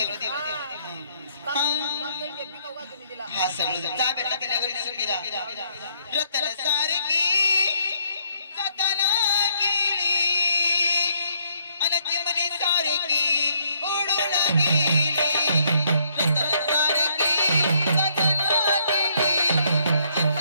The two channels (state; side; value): inverted; both; correlation -0.69